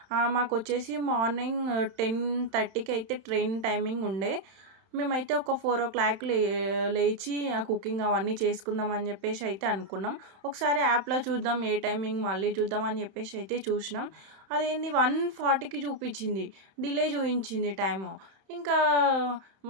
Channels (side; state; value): left; late; 31 ms